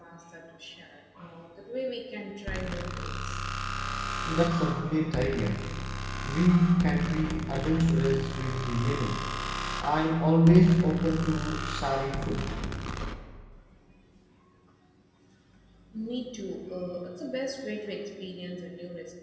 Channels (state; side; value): identical; both; correlation 1.00